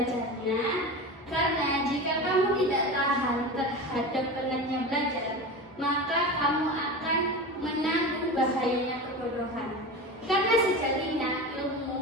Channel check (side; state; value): both; normal; correlation 0.27